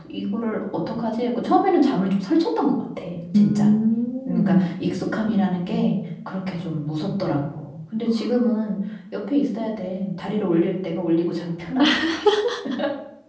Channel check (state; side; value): identical; both; correlation 1.00